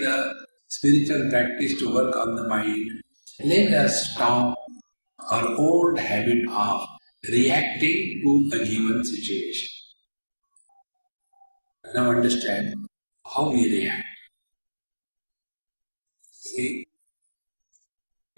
spiritual practice to work on the mind? Let us stop our old habit of reacting to a given situation. Now understand how we react. See,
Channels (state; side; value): inverted; both; correlation -1.00